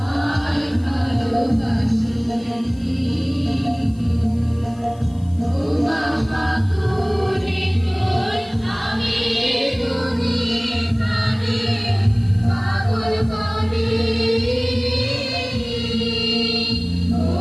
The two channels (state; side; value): noise; left; hiss, 29 dB below the sound